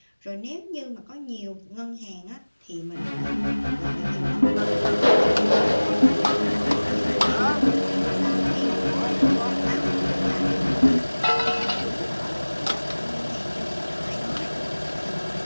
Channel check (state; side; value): inverted; both; correlation -1.00